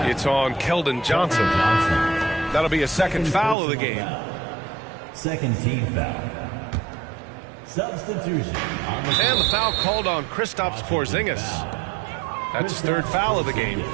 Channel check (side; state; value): left; drops out; at 3.6 s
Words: It's on Keldon Johnson. That'll be a second foul of the game. Second team foul. Substitution. And the foul called on Kristaps Porzingis. That's his third foul of the game.